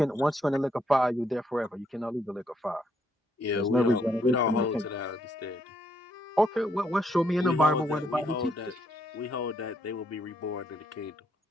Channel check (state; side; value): normal; both; correlation 0.73